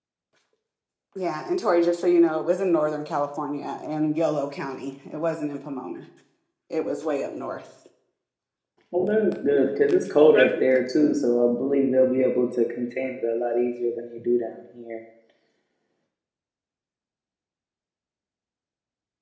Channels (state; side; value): identical; both; correlation 1.00